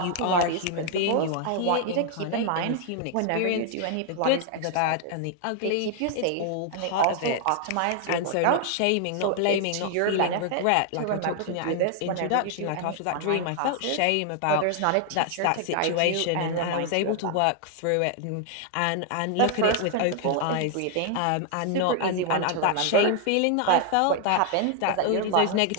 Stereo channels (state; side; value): different; both; correlation 0.00